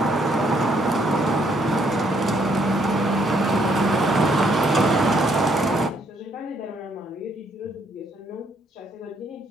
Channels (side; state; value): both; normal; correlation 0.70